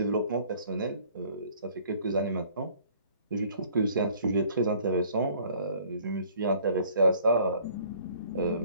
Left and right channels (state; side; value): inverted; both; correlation -0.56